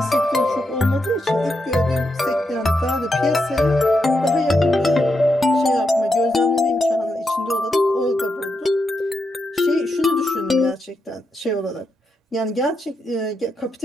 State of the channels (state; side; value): normal; both; correlation 0.84